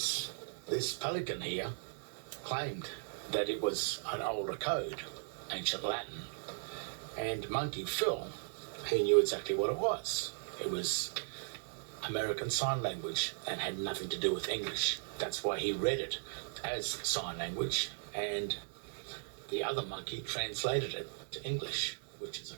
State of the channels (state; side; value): silent; left; digital silence